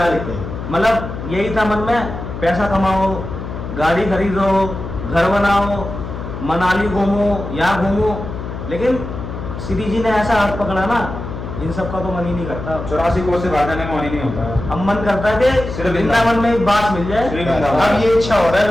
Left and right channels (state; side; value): noise; left; hum, 8 dB below the sound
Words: थे। मतलब यही था मन में, पैसा कमाओ, गाड़ी खरीदो, घर बनाओ, मनाली घूमो, यहाँ घूमो। लेकिन श्री जी ने ऐसा हाथ पकड़ा ना, इन सब का तो मन ही नहीं करता। 84 कोस से बाहर जाने का मन ही नहीं होता है। अब मन करता है कि सिर्फ वृंदावन में एक बात मिल जाए। श्री वृंदावन। अब ये इच्छा हो रहा है